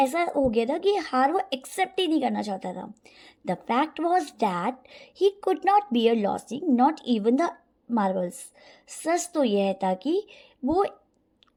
हो गया था कि हार वो एक्सेप्ट ही नहीं करना चाहता था। The fact was that he could not bear losing, not even the marbles. सच तो यह था कि वो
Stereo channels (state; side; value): identical; both; correlation 1.00